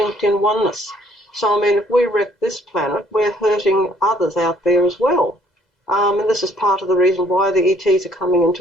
in oneness. So, I mean, if we wreck this planet, we're hurting others out there as well. And this is part of the reason why the ETs are coming in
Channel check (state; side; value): normal; both; correlation 0.61